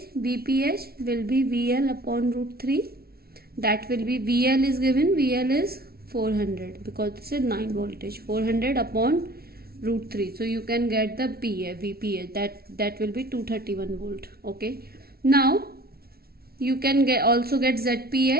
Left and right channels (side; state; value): left; late; 0.44 ms